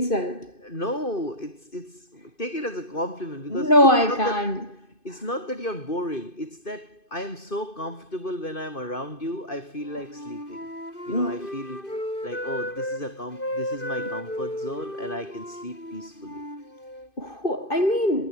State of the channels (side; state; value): right; late; 2.5 ms